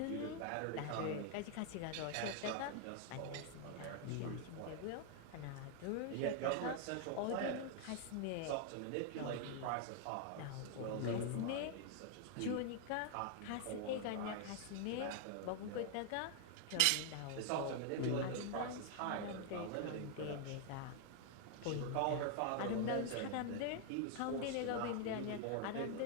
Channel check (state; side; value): different; both; correlation 0.00